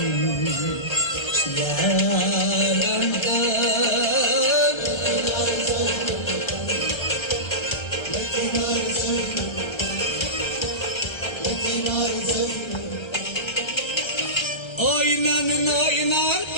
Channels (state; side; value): late; right; 1.3 ms